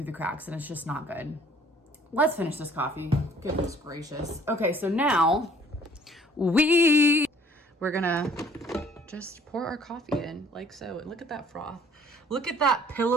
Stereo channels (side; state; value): both; normal; correlation 0.56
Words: the cracks and it's just not good. Let's finish this coffee. Goodness gracious. Okay, so now we're gonna just pour our coffee in like so. And look at that froth. Look at that